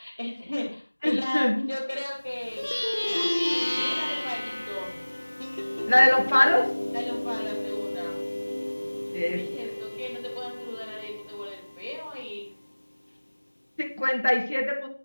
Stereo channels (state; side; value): inverted; both; correlation -1.00